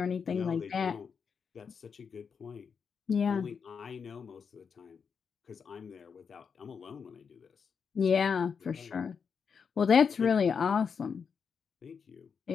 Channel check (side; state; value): right; quieter; 6.2 dB